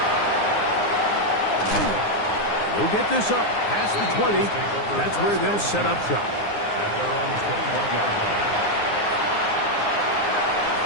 They'll get this up past the 20. That's where they'll set up shop. At their own 21-yard line.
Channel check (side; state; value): right; late; 9.7 ms